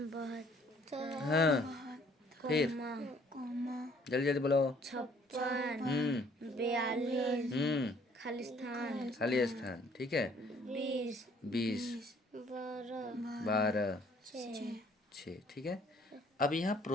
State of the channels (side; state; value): both; normal; correlation 0.60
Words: हाँ, फिर जल्दी जल्दी बोलो। 56, 42, खाली स्थान। ठीक है, 20, 12, 6। ठीक है, अब यहाँ